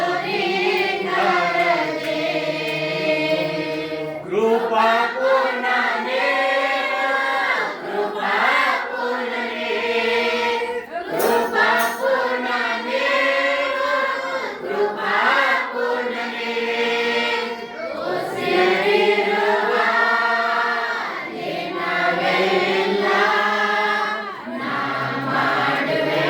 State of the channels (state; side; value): identical; both; correlation 1.00